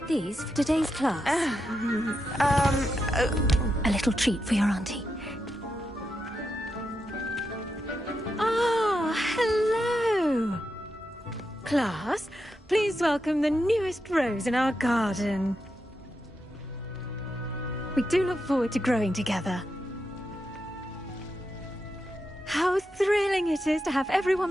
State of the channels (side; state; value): both; normal; correlation 0.86